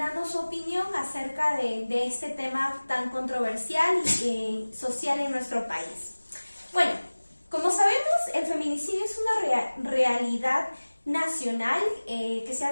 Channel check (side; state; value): both; inverted; correlation -1.00